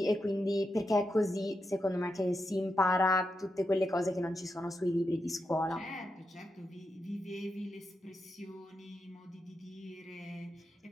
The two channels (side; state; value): both; normal; correlation 0.86